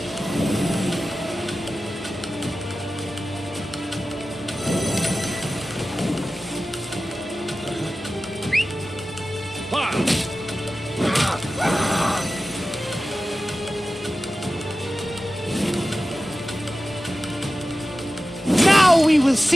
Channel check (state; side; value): noise; right; hum, 26 dB below the sound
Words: Now we will